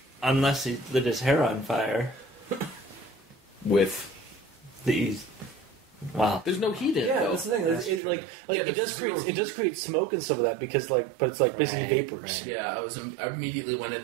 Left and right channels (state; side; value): drops out; left; at 8.0 s